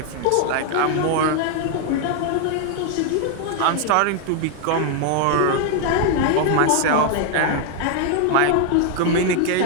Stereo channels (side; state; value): both; different; correlation 0.01